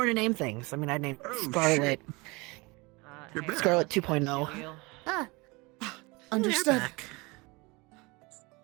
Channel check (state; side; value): quieter; left; 25.6 dB